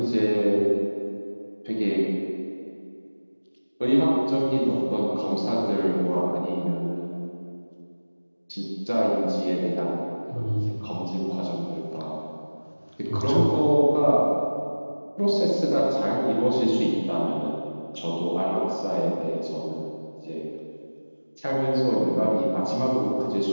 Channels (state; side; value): inverted; both; correlation -1.00